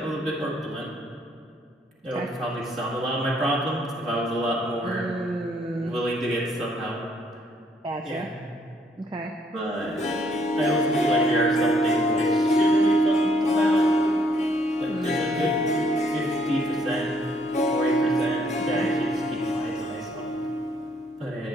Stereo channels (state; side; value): normal; both; correlation 0.68